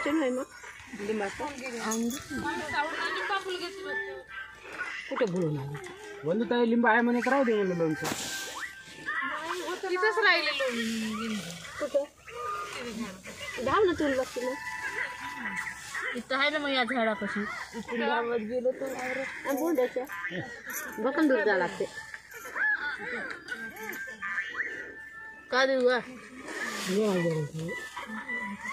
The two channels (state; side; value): identical; both; correlation 1.00